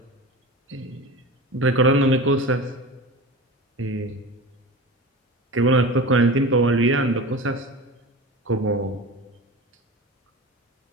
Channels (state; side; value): normal; both; correlation 0.31